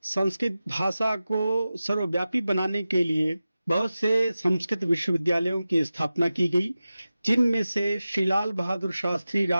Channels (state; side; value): inverted; both; correlation -0.94